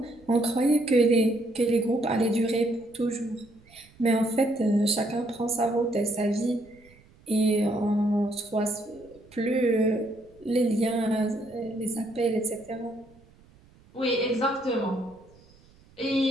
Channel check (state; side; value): noise; right; rumble, 28 dB below the sound